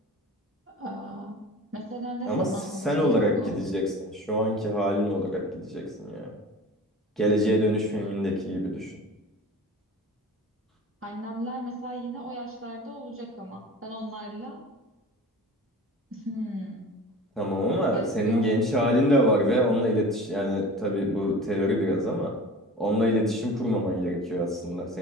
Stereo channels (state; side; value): normal; both; correlation 0.38